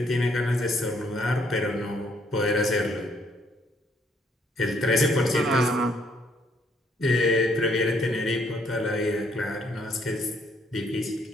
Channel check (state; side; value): normal; both; correlation 0.68